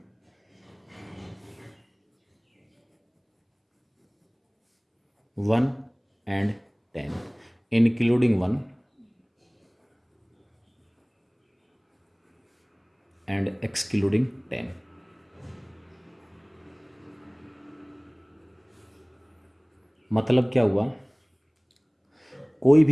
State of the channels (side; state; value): both; identical; correlation 1.00